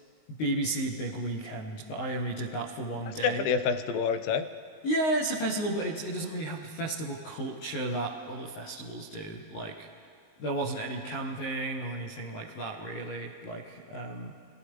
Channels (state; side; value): late; right; 19 ms